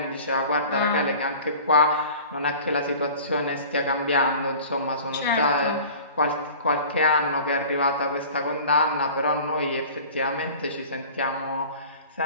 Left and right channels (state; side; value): inverted; both; correlation -0.43